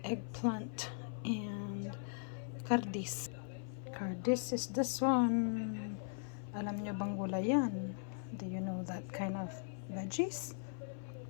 eggplant, and kardis. Kardis is this one. Alam nyo bang gulay yan? Do you know that kind of veggies?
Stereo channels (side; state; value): right; silent; 51 dB below the other